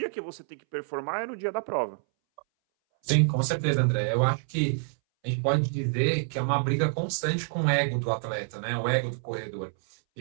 que você tem que performar é no dia da prova. Sim, com certeza, André. Eu acho que a gente pode dizer que é uma briga constante com o ego do atleta, né? O ego do corredor.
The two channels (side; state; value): left; silent; 60 dB below the other